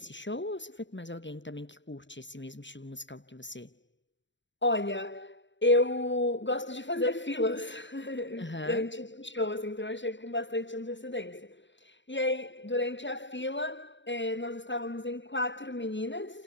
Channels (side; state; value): right; late; 0.53 ms